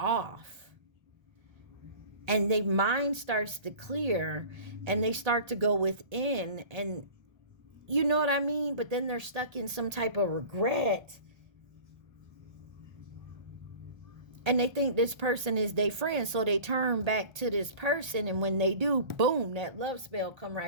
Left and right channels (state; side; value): late; left; 1.3 ms